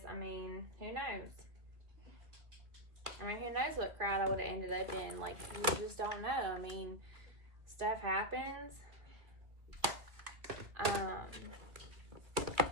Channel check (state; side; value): late; left; 2.1 ms